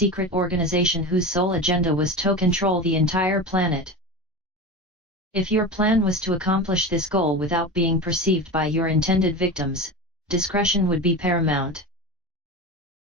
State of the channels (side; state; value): both; normal; correlation 0.27